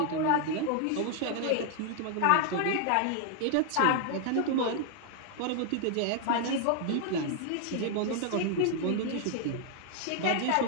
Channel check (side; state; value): both; different; correlation 0.00